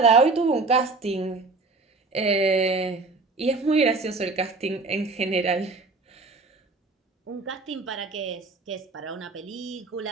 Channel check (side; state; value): left; quieter; 3.7 dB